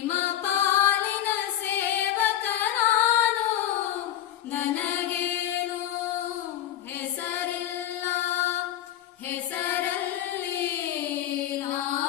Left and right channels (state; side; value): quieter; right; 11.9 dB